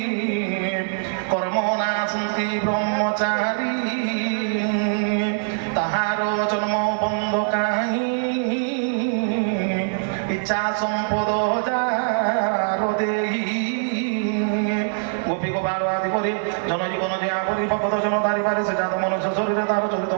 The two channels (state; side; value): silent; left; 61 dB below the other